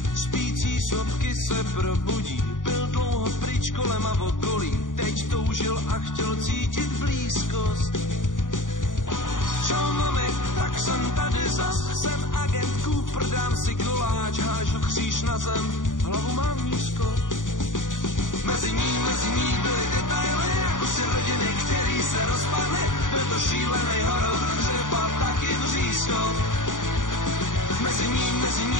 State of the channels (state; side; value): late; right; 0.88 ms